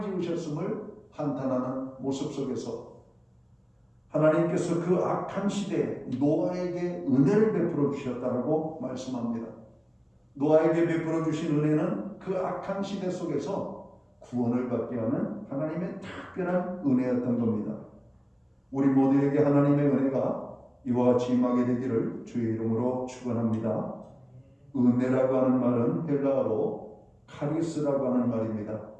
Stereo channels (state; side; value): identical; both; correlation 1.00